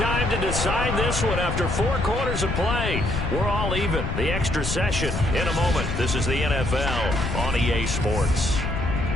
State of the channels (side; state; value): left; noise; rumble, 3 dB below the sound